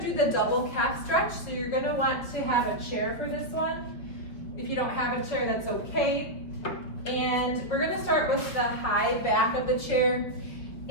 do the double calf stretch. So you're going to want to have a chair for this one. If you don't have a chair, that's okay. And we're going to start with the high back of the chair,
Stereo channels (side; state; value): right; late; 5.7 ms